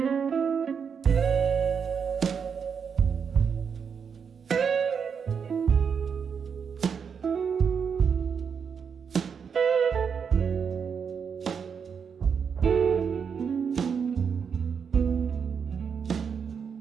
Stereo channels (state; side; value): quieter; left; 6.6 dB